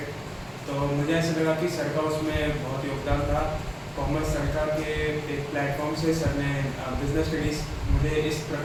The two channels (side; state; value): both; identical; correlation 1.00